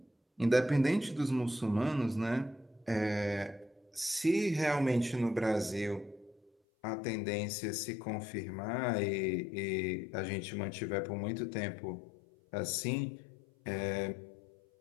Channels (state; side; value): drops out; right; at 6.5 s